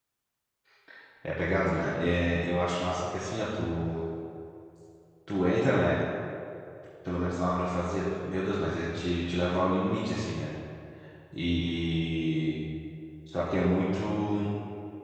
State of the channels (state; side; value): identical; both; correlation 1.00